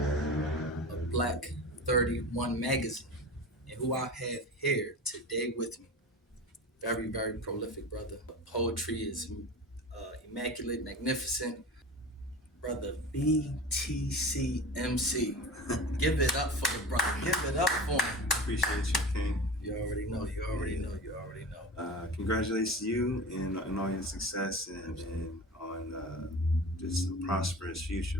of Black 31 magazine. And who I have here today with me, very, very prolific brother. Poetry is immaculate, magnificent. Brother BTC MC. Give it up for the brother. Give it up for him. Appreciate you, King. You already know. You already know. You already know. Congratulations to you and all your success and on just a prosperous future,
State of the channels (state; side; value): normal; both; correlation 0.32